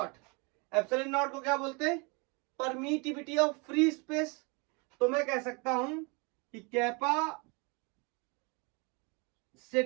Epsilon naught को क्या बोलते हैं, परमिटिविटी ऑफ फ्री स्पेस। तो मैं कह सकता हूं कि capacitance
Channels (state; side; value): quieter; left; 30.8 dB